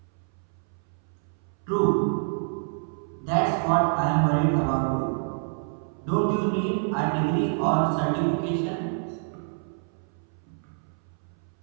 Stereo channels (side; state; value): left; silent; 60 dB below the other